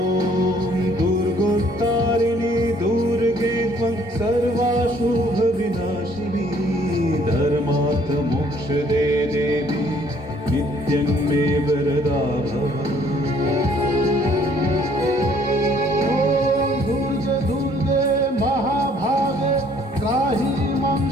दुर्गोत्तारिणी दुर्गे त्वं सर्वाशुभविनाशिनी धर्मार्थ मोक्षदे देवी नित्यं मे वरदा भव। दुर्गे दुर्गे महाभागे त्राहि मां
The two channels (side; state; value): both; normal; correlation 0.61